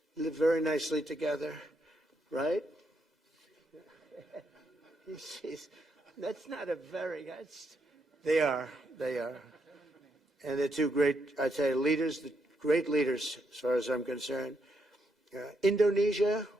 live very nicely together, right? That's not a very, they are. And they're two great, I'd say, leaders, great leaders as far as I'm concerned. Indonesia,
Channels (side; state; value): both; normal; correlation 0.78